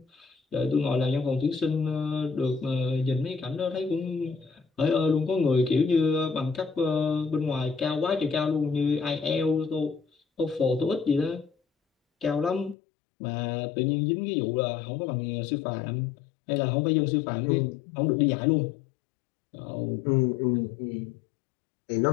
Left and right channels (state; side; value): drops out; right; at 12.8 s